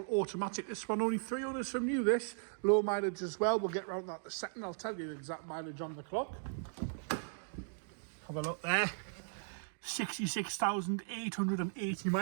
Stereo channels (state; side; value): silent; left; digital silence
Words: automatic. This one only 300 from new, this. Low mileage as well. We'll get around that in a second. I'll tell you the exact mileage on the clock. Have a look there. 66,880